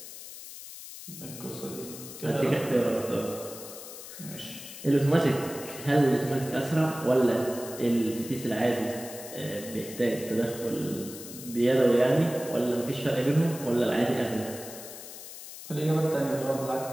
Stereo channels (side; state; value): left; noise; hiss, 13 dB below the sound